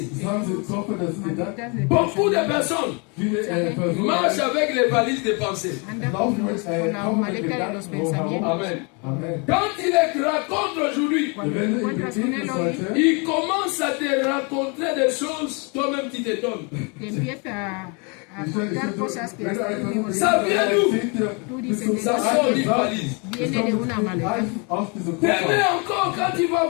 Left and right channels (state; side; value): quieter; right; 32.9 dB